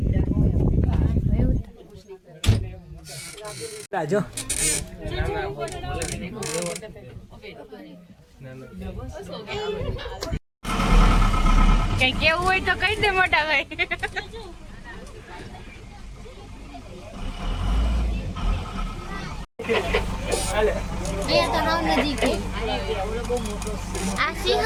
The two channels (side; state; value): both; identical; correlation 1.00